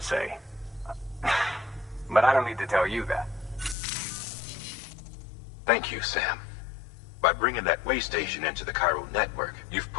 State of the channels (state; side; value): drops out; right; at 3.8 s